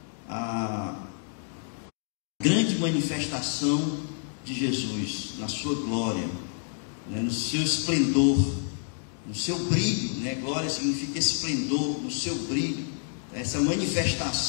grande manifestação de Jesus, na sua glória, né, no seu esplendor, no seu brilho, né? Glória significa esplendor, no seu brilho, essa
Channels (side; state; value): right; silent; digital silence